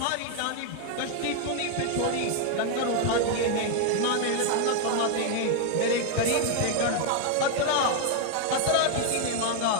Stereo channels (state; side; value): different; both; correlation 0.01